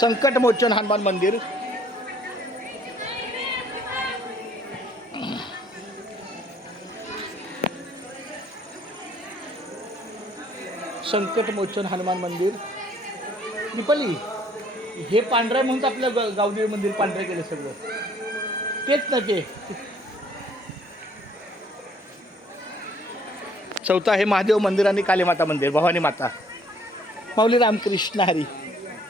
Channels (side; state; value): both; normal; correlation 0.61